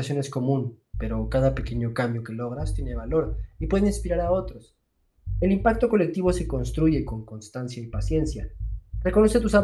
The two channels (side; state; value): both; identical; correlation 1.00